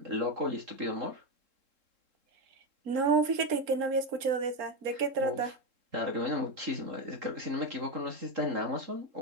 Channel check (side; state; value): left; late; 3.7 ms